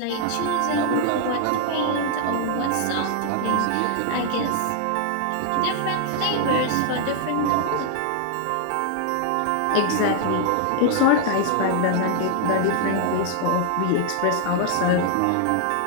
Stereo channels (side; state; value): both; different; correlation 0.00